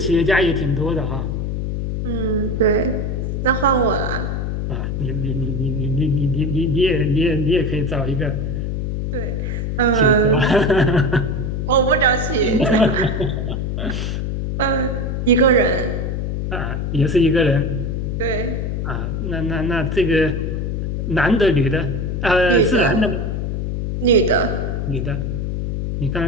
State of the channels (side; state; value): left; noise; hum, 2 dB below the sound